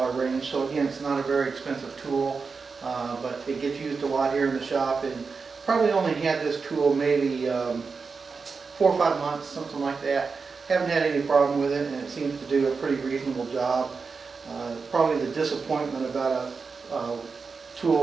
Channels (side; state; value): left; quieter; 4.9 dB